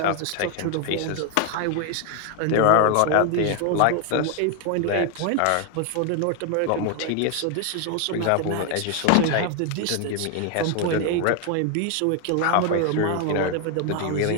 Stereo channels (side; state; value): both; different; correlation 0.01